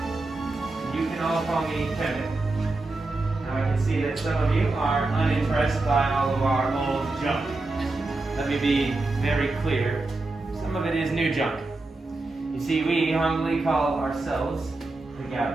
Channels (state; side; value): quieter; left; 3.2 dB